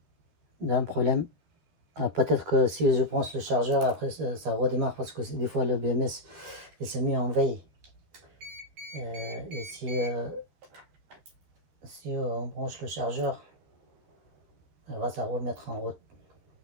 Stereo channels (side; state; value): left; late; 13 ms